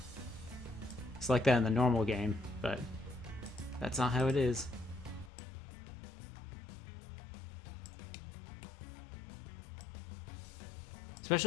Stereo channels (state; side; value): drops out; right; at 5.3 s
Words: like that in the normal game, but That's not how it is.